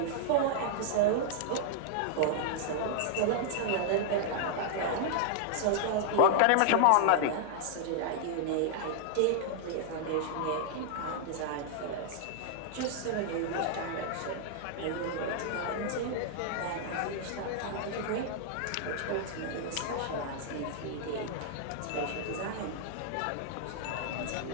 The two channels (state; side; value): different; both; correlation -0.01